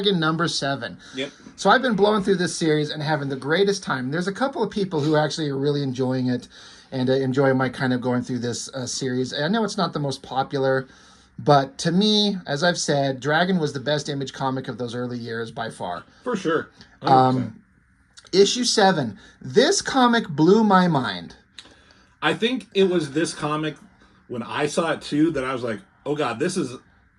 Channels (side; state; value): both; identical; correlation 1.00